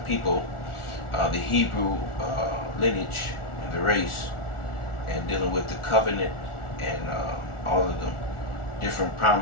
people, the Hebrew lineage and the race, and dealing with the covenant and all of the different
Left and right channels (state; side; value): late; right; 1.4 ms